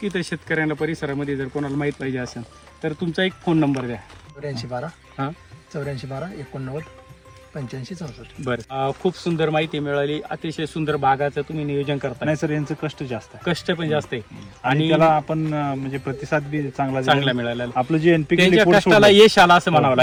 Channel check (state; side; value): identical; both; correlation 1.00